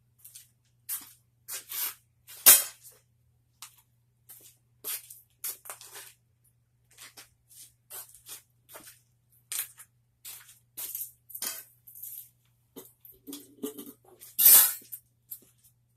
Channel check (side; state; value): both; identical; correlation 1.00